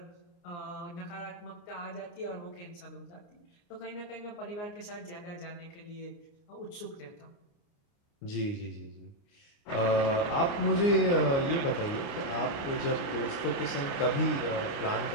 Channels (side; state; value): right; late; 29 ms